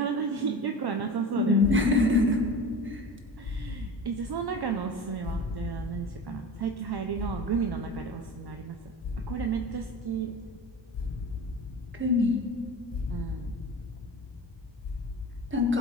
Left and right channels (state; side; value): normal; both; correlation 0.34